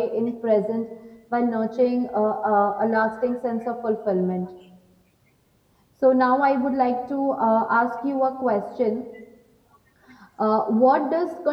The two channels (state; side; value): identical; both; correlation 1.00